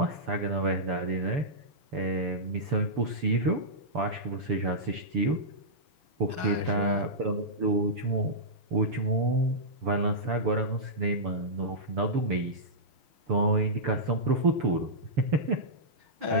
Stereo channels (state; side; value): late; left; 6.9 ms